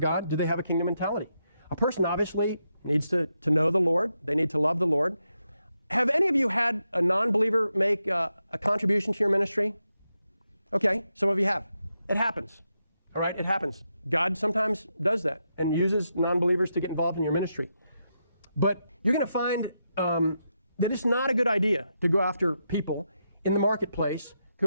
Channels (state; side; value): inverted; both; correlation -0.84